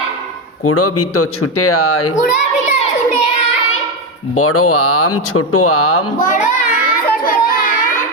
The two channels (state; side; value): normal; both; correlation 0.10